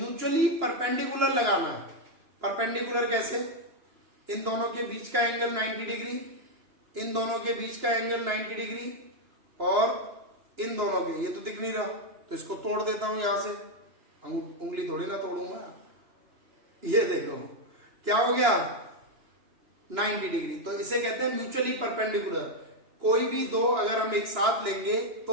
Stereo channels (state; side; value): late; left; 2.9 ms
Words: परपेंडिकुलर लगाना है। परपेंडिकुलर कैसे, इन दोनों के बीच का एंगल 90 डिग्री, इन दोनों के बीच का एंगल 90 डिग्री, और इन दोनों के, ये तो दिख नहीं रहा तो इसको तोड़ देता हूं यहां से। उंगली थोड़ी ना तोड़ूंगा। ये देखो क्या हो गया, 90 डिग्री। तो इसे कहते हैं म्यूचुअली परपेंडिकुलर। कोई भी दो अगर हम एक साथ लेंगे